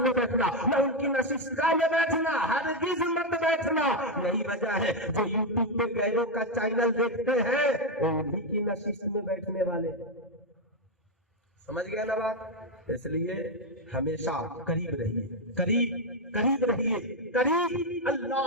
بیٹھنا، نہ ان کی نشستگاہ میں بیٹھنا، ہرگز مت بیٹھنا۔ یہی وجہ ہے جو یوٹیوب پہ غیروں کا چینل دیکھتے ہیں وہ انہی کی نشست میں بیٹھنے والے، سمجھ گئے نا بات؟ اس لیے ہمیشہ قریب رہیے، قریب رہیے، قریب۔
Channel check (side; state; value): both; normal; correlation 0.04